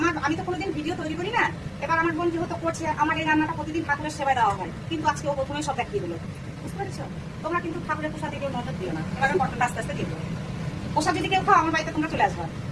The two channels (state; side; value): identical; both; correlation 1.00